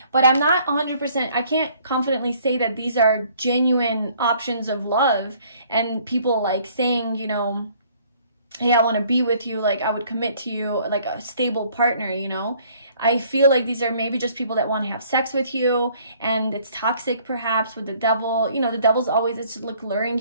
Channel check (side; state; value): both; inverted; correlation -0.59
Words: But I'm not 100%, I can't confidently say that these are genuine options of love, and people like saying, you know, hey, I want to be with you, like I would commit to you, like a stable partner, you know. I feel like these are maybe just people that want to have sex with you, and it's toxic perhaps with the devil. You know, the devil's always, it's like luring